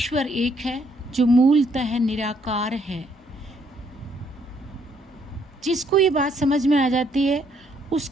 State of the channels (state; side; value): normal; both; correlation 0.69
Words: एक है जो मूलतः निराकार है। जिसको ये बात समझ में आ जाती है